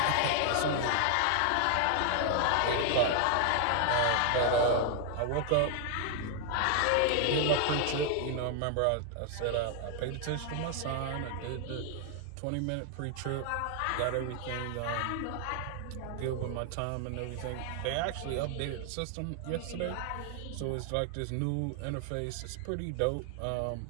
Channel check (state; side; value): different; both; correlation 0.00